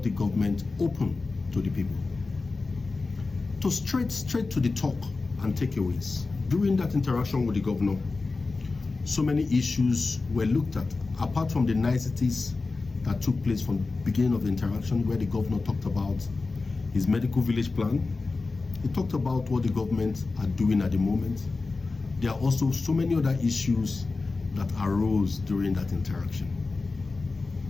the government open to the people. To straight to the talk and takeaways. During that interaction with the governor, so many issues were looked at, apart from the niceties that took place from the beginning of the interaction, where the governor talked about his medical village plan. He talked about what the government are doing at the moment. There are also so many other issues that arose during that interaction.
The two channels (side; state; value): right; quieter; 3.8 dB